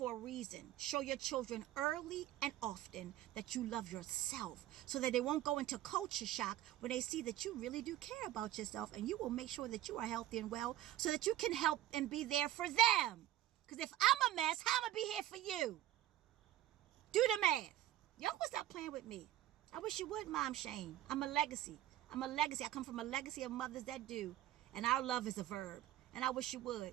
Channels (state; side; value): quieter; left; 13.6 dB